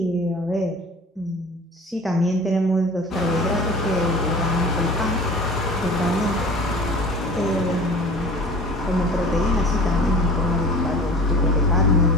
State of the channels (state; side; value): normal; both; correlation 0.41